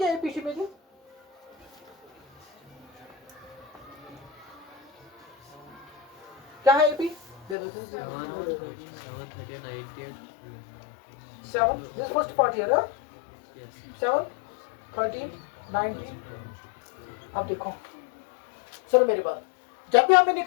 एपी में जी क्या है एपी दे दो 7 दिस फर्स्ट पार्ट हियर 7 13 19। अब देखो सुनो मेरी बात, जब भी हमें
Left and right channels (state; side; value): drops out; right; at 7.6 s